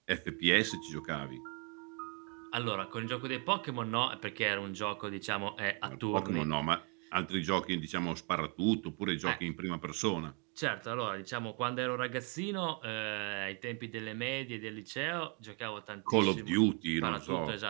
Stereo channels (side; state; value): left; quieter; 35.5 dB